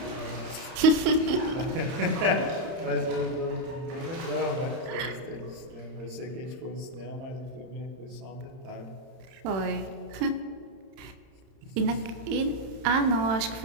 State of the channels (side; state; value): left; late; 31 ms